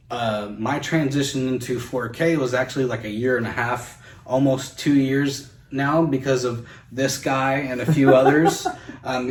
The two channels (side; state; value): both; identical; correlation 1.00